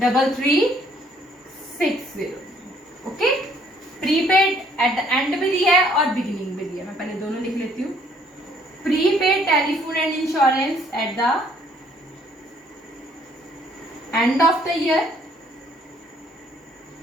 okay. Prepaid eight the and भी दिया है और बिगिनिंग भी दिया है, मैं पहले दोनों लिख लेती हूँ। Prepaid telephone and insurance eight the end of the year,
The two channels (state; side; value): normal; both; correlation 0.63